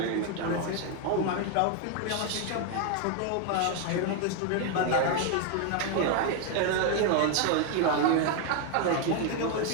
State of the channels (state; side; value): different; both; correlation 0.01